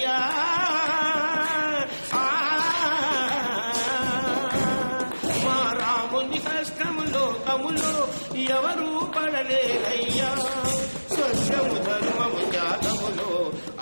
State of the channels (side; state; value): both; inverted; correlation -1.00